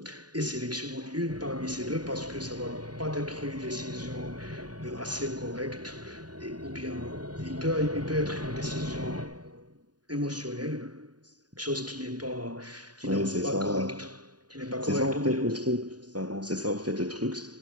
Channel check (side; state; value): left; late; 0.69 ms